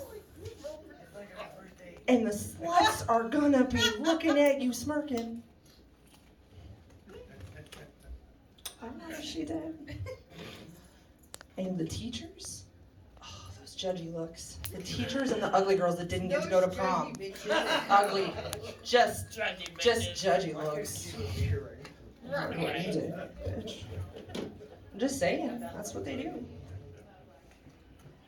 And the sluts are gonna be looking at you smirking. I know she did. And the teachers? Judgy looks. The teachers and the ugly girls that didn't get to go to prom. Ugly. Just judgy looks. I'm just saying, that's what they do.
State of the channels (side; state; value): both; identical; correlation 1.00